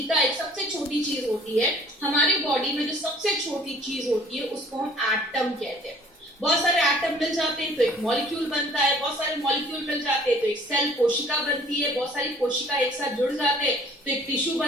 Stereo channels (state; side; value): normal; both; correlation 0.54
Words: एक सबसे छोटी चीज होती है, हमारी बॉडी में जो सबसे छोटी चीज होती है उसको हम एटम कहते हैं। बहुत सारे एटम मिल जाते हैं तो एक मॉलिक्यूल बनता है, बहुत सारे मॉलिक्यूल मिल जाते हैं तो एक सेल, कोशिका बनती है, बहुत सारी कोशिका एक साथ जुड़ जाते हैं तो एक टिश्यू